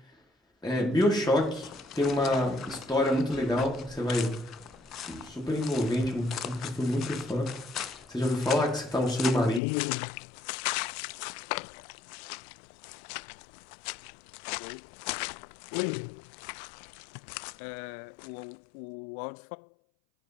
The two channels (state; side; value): drops out; right; at 9.6 s